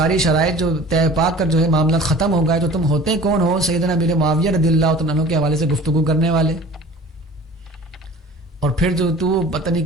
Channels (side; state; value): both; normal; correlation 0.44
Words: شرائط جو طے پا کر جو ہے معاملات ختم ہو گئے, تو تم ہوتے کون ہو سیدنا امیر معاویہ رضی اللہ تعالی عنہ کے حوالے سے گفتگو کرنے والے. اور پھر جو تو پتہ